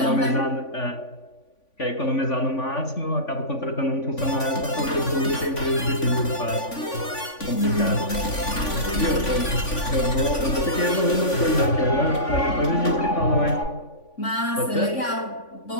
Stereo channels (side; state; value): right; late; 3.5 ms